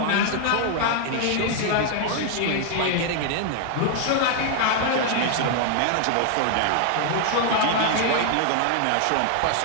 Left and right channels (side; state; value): both; different; correlation 0.00